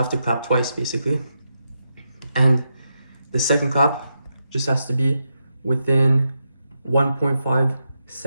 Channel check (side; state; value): both; inverted; correlation -0.85